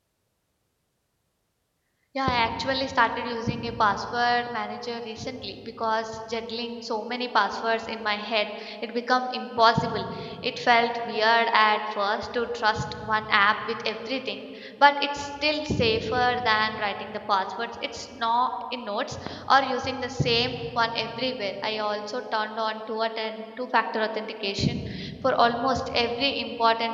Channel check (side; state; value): both; identical; correlation 1.00